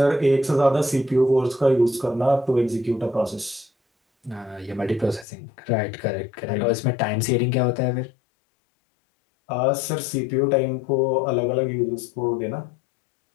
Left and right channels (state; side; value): drops out; right; at 5.2 s